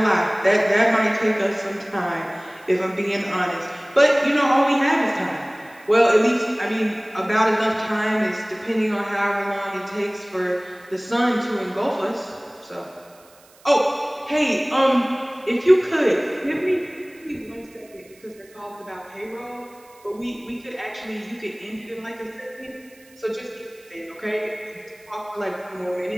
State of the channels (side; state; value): right; noise; hiss, 28 dB below the sound